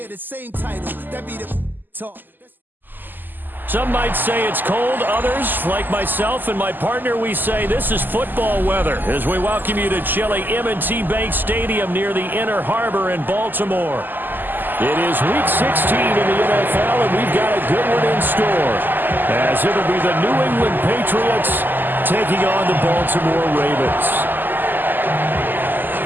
the same title. That be the talk. Some might say it's cold. Others, like myself and my partner, we say this is football weather as we welcome you to chilly M&T Bank Stadium near the Inner Harbor in Baltimore. It is Week 16 in the NFL, and we've got a good one in store, as it'll be the New England Patriots taking on the Baltimore Ravens.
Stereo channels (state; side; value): late; left; 0.089 ms